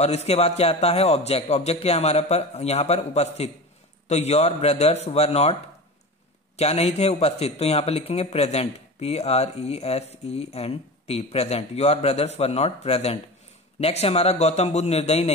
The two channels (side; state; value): both; normal; correlation 0.30